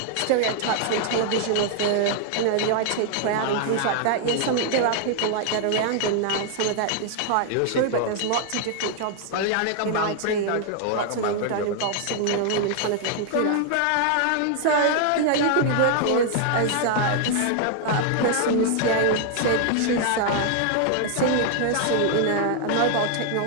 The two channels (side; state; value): both; different; correlation 0.00